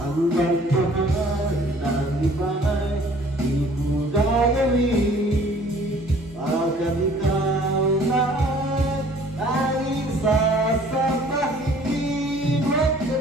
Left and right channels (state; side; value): normal; both; correlation 0.54